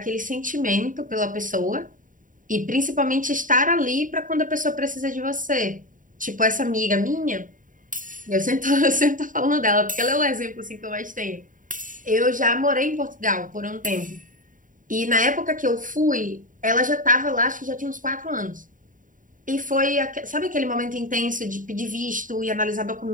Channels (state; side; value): late; left; 0.38 ms